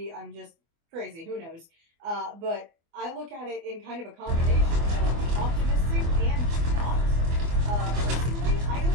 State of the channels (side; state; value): left; late; 24 ms